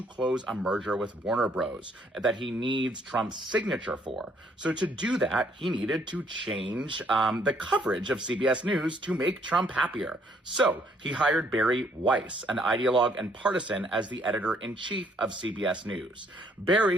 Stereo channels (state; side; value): normal; both; correlation 0.66